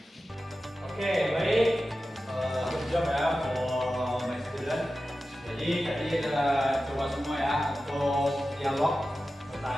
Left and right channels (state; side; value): normal; both; correlation 0.93